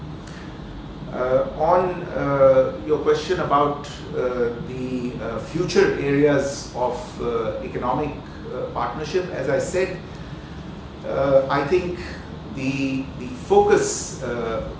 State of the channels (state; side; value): identical; both; correlation 1.00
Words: On your question about the future areas of economic partnership, as I said, I think the focus,